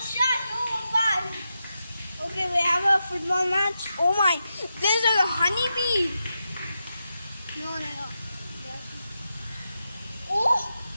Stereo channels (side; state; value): both; inverted; correlation -0.88